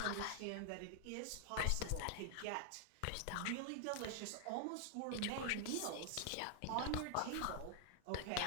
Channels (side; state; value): both; different; correlation 0.00